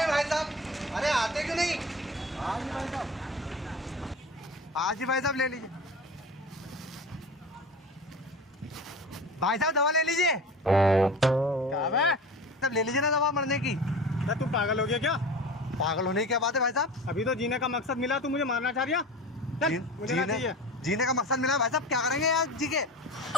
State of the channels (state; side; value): normal; both; correlation 0.34